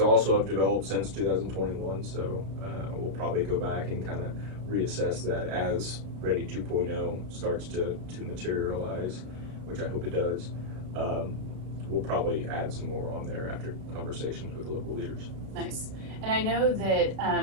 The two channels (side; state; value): left; late; 32 ms